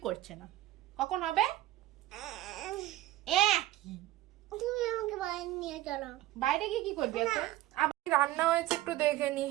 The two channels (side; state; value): left; quieter; 15.7 dB